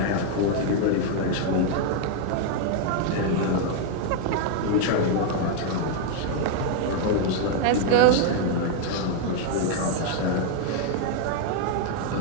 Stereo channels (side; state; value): both; different; correlation 0.00